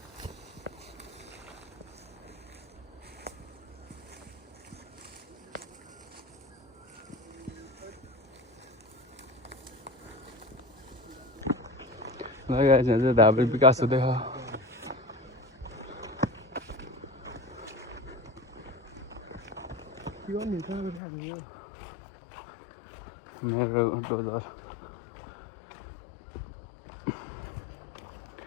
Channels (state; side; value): drops out; right; at 21.0 s